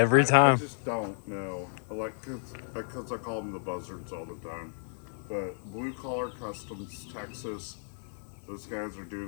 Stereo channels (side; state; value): right; silent; digital silence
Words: time. I just don't know. Because I call them the Buzzards all the time. But Blue Collar Customs Texas, those guys are